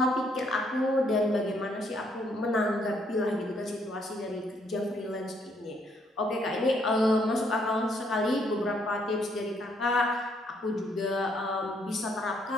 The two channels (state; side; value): normal; both; correlation 0.70